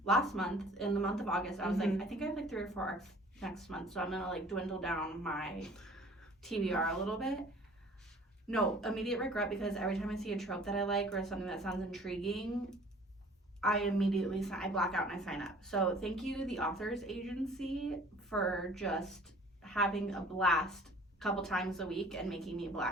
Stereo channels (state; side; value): normal; both; correlation 0.50